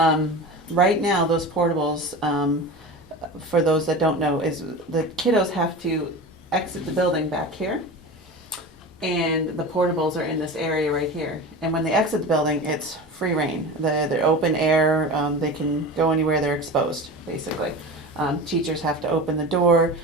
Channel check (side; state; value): both; normal; correlation 0.30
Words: right now, those portables, for those that don't know, is the kiddos have to exit the building back here, and the portables are in this area right here. And when they exit the building, it's free reign. They're open air. They can go anywhere. They're exposed, basically. Teachers have to open the door.